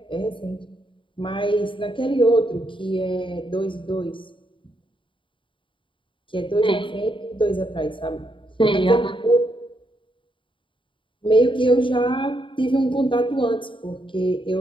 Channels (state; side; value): late; right; 0.24 ms